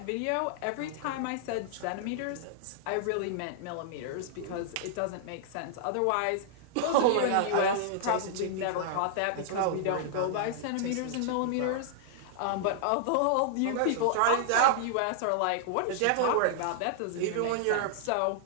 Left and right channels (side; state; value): both; different; correlation -0.01